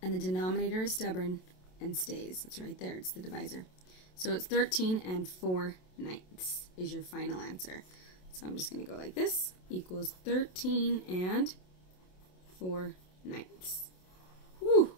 and the denominator is stubborn and stays. It's right there. It's the divisor. So it's 13 and 4/9 is your final answer. So I'm just going to go like this. Equals 13 and 4/9. Whew!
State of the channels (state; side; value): late; right; 27 ms